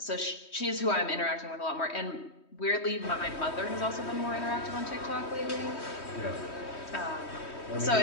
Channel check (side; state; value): right; late; 3.1 ms